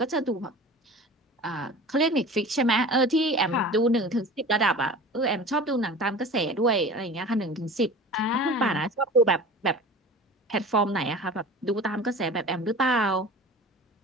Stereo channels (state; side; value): normal; both; correlation 0.38